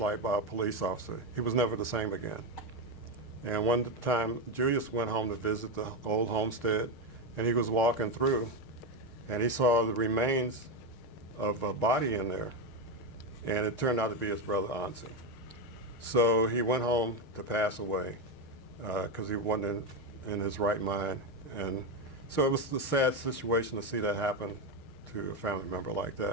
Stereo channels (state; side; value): late; right; 6.5 ms